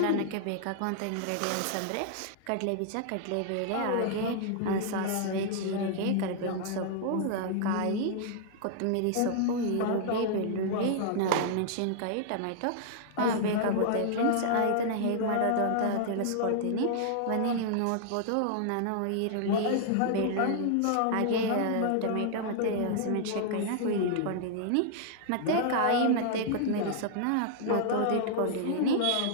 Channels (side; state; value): both; different; correlation -0.01